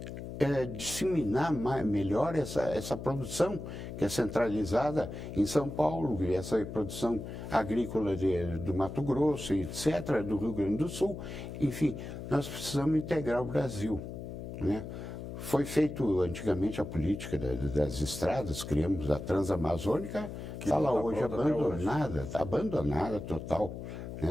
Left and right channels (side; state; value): left; noise; hum, 8 dB below the sound